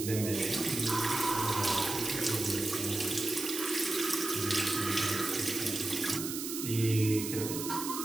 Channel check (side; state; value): right; noise; hiss, 5 dB below the sound